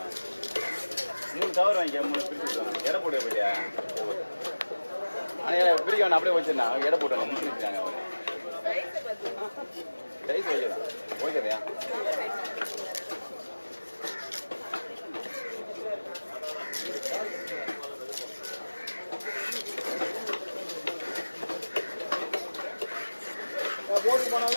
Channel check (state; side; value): inverted; both; correlation -1.00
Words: 3 கவர் வாங்கிக்க 3 பிரிச்சு எடை போட்டு போயிட்டியா ஆனால் பிரிக்க வேணா அப்படியே வச்சிருந்தாங்க எடை போட்டாங்க முடிச்சுருக்காங்க அவங்க ரைஸ் வைக்கலாம் ஓகேதையா போட்டு